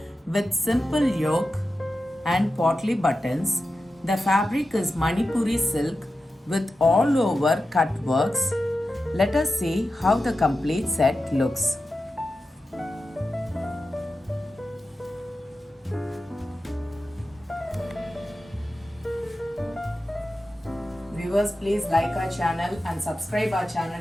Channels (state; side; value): normal; both; correlation 0.92